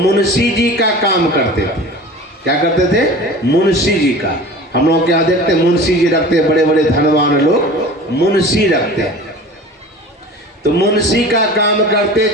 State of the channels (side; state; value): both; normal; correlation 0.39